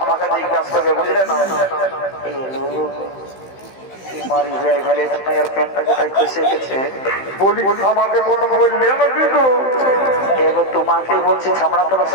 জিজ্ঞাসা করবে বুঝলে না মারি হয়ে গেলে তোমার প্যান্টটা কোথায় খসে গেছে বলি আমাকে কোনো বললে না কিন্তু এগো তোমাকে বলছি ছামড়া তোলা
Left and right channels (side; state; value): right; late; 15 ms